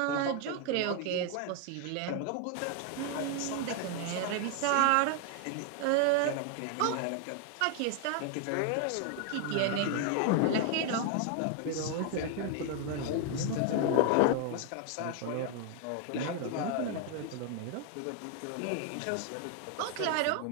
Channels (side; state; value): both; different; correlation 0.00